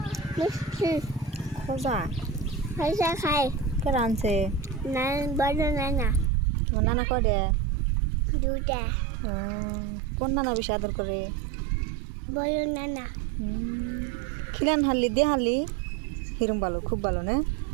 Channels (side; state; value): left; drops out; at 6.3 s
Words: মিষ্টি খোজা খাজা খাই। কে রানছে? না বড় নানা তোমার নানা কয়ডে? দুটা ও, কোন নানা বেশি আদর করে? বড় নানা। খিলান হারলি দিয়ে হারলি হিরম ভালো, খুব ভালো না?